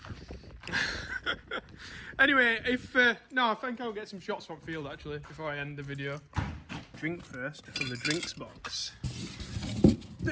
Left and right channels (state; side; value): identical; both; correlation 1.00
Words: Anyway, no, I think I'll get some shots from field actually before I end the video. Drink first from the drinks box.